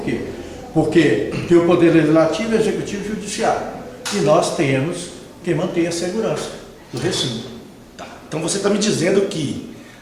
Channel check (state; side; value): identical; both; correlation 1.00